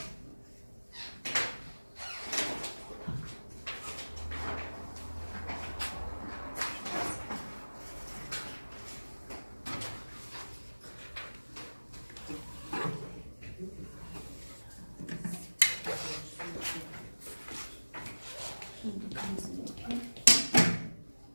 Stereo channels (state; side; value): inverted; both; correlation -1.00